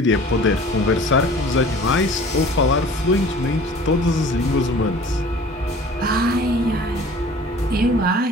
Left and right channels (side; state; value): both; normal; correlation 0.46